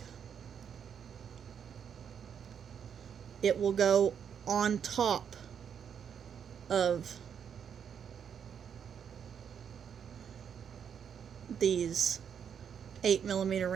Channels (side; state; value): left; quieter; 7.8 dB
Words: It will go on top of these 8mm